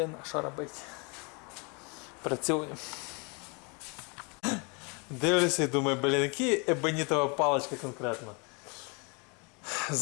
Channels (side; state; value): right; quieter; 31.9 dB